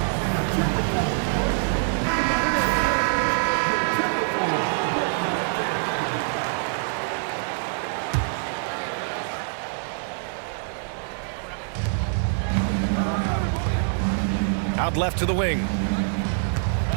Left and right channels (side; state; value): left; silent; digital silence